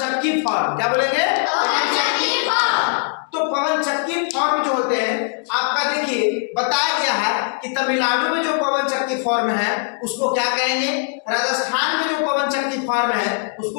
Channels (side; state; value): right; silent; 58 dB below the other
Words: फार्म। क्या बोलेंगे? पवन चक्की फार्म। तो पवन चक्की फार्म जो होते हैं आपका देखिए बताया गया है कि तमिलनाडु में जो पवन चक्की फार्म है उसको क्या कहेंगे, राजस्थान में जो पवन चक्की फार्म है